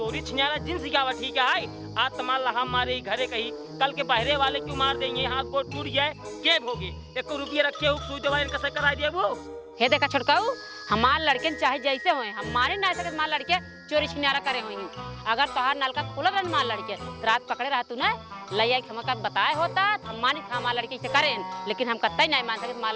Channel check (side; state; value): both; identical; correlation 1.00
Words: छिनारा जिन सिखावा ठीक है। आज तमाल हम मारे घरे कही, कल के बहरे वाले क्यों मार देंगे, हाथ गोड़ टूट जाए के भोगे, 1 रुपया रखे हो सुई दवाई कैसे करा दिया वो। हे देखा छोटकाऊ, हमार लड़के चाहे जैसे होए हमारे ना सके हमार लड़के चोरी छिनारा करे होई। अगर तोहार नलका खुला रहन हमार लड़के तो रात पकड़े रहा तू ना लैया के हमका बताए होता हम मानी था हमार लड़के से करें, लेकिन हम कतई नहीं मान सके हमार